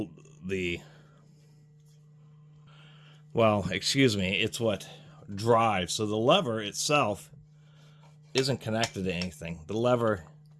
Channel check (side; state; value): both; identical; correlation 1.00